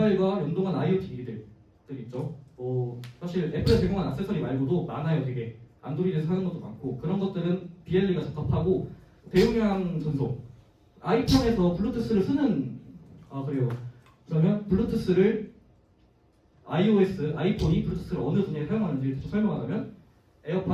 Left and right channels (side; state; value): both; identical; correlation 1.00